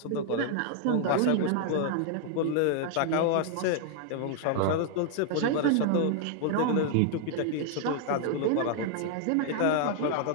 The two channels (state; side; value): different; both; correlation 0.00